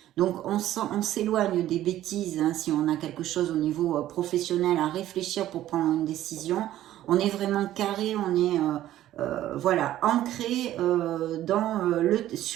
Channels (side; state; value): left; quieter; 13.4 dB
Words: Donc, on s'éloigne des bêtises, hein, si on a quelque chose au niveau professionnel à réfléchir pour prendre une décision. On est vraiment carré, on est voilà, ancré